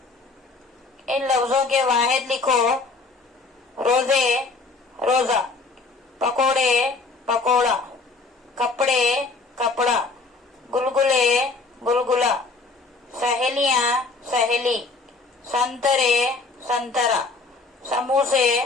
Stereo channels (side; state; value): right; quieter; 3.8 dB